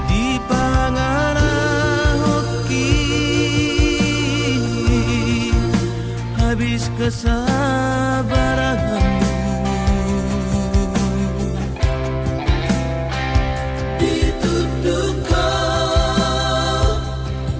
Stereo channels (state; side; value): identical; both; correlation 1.00